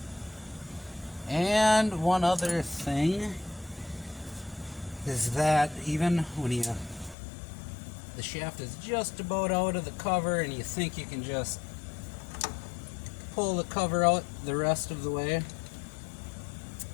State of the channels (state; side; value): drops out; right; at 7.2 s